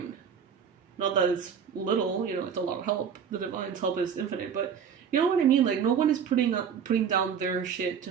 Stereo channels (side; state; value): left; quieter; 7.4 dB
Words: Not that it's little, it's a lot of help. The divine's help is infinite, but you know what I mean? Like, no one is putting down their shit